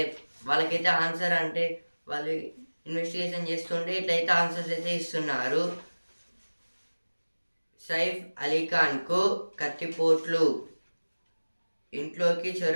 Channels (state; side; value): inverted; both; correlation -1.00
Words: వాళ్ళకైతే ఆన్సర్ అంటే వాళ్ళు ఇన్వెస్టిగేషన్ చేస్తుంటే ఇట్లయితే ఆన్సర్స్ అయితే ఇస్తున్నారు. సైఫ్ అలీఖాన్కు కత్తిపోట్లు. ఇంట్లోకి